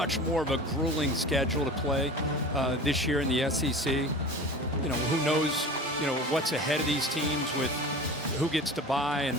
more of a grueling schedule to play this year in the SEC. You know, who knows, you know, what's ahead of these teams with who gets to bye and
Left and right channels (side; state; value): both; normal; correlation 0.36